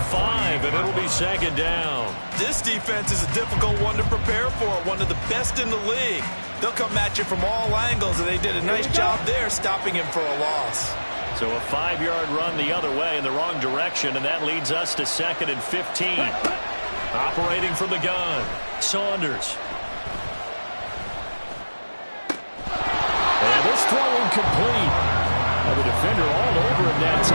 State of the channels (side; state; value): both; inverted; correlation -1.00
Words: 5, and it'll be second down. This defense is a difficult one to prepare for, one of the best in the league. They'll come at you from all angles, and they did a nice job there stopping him for a loss. So a 5-yard run the other way in the wrong direction, and that leads us to second and 15. Operating from the gun, Saunders. And this throw incomplete. The defender all over him that